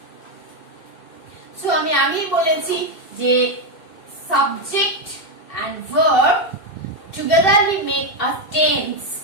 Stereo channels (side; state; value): right; late; 2.7 ms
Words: so আমি বলেছি যে subject and verb togetherly make a tense.